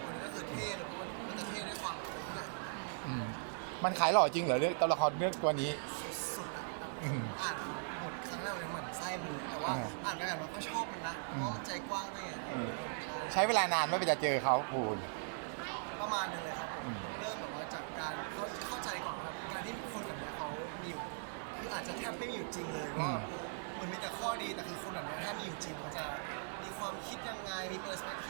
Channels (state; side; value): silent; left; digital silence